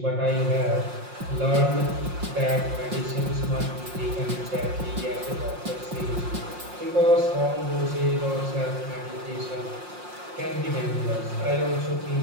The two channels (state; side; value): late; left; 5.6 ms